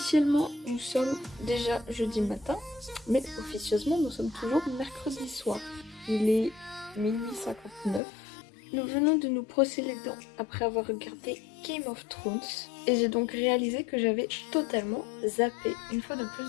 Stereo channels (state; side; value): drops out; right; at 8.0 s